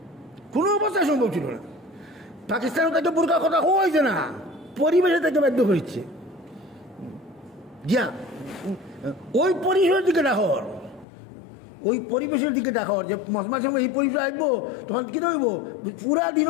কোনো অবস্থায় সম্ভব ছিল না। পাকিস্তানে তাকে বুরকার কথা হয়েছে না, পরিবেশে তাকে বাধ্য হয়েছে। ওই পরিবেশের দিকে ডাকর, ওই পরিবেশের দিকে ডাকর যে মাঝে সময় এই পরিবেশ আসবো, তখন কি হইব পুরা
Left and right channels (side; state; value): right; drops out; at 11.1 s